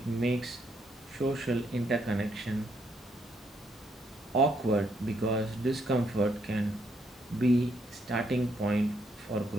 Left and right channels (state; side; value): normal; both; correlation 0.74